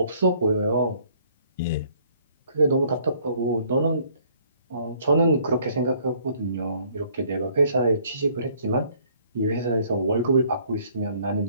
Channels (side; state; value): both; inverted; correlation -0.61